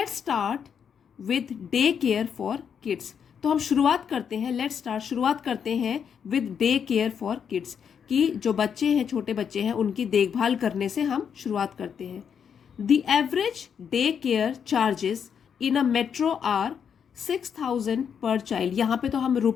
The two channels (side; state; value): right; quieter; 7.5 dB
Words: start with day care for kids. तो हम शुरुआत करते हैं, शुरुआत करते हैं with day care for kids, कि जो बच्चे हैं, छोटे बच्चे हैं, उनकी देखभाल करने से हम शुरुआत करते हैं। The average day care charges in a metro are 6,000 per child. यहाँ पे तो हम